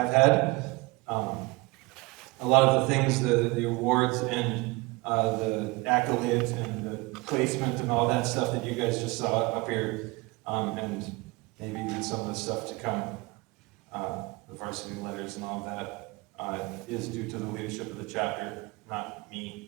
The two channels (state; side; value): quieter; left; 24.3 dB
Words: had. A lot of the things, the awards and the accolades and the placement and all that stuff that you guys just saw up here, and maybe even some of the stuff to come, the varsity letters and all of that, is due to the leadership of the chapter, not